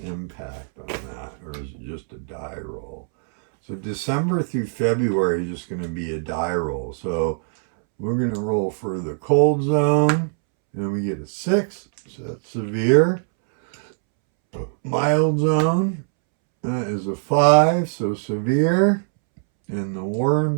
impact on that, or is it just a die roll? So December through February is just going to be a die roll. So we're going to roll for the cold zone, and we get a 6, so that's severe. Mild zone is a 5, so severe. In the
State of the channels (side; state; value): left; silent; 64 dB below the other